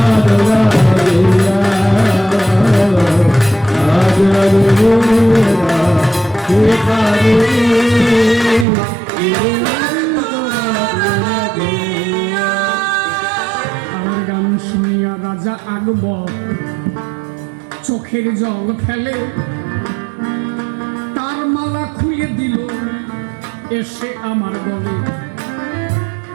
আমার গান শুনিয়া রাজা আকবর চোখের জল ফেলে, তার মালা খুলে দিল এসে আমার গলে।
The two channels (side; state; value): left; drops out; at 8.7 s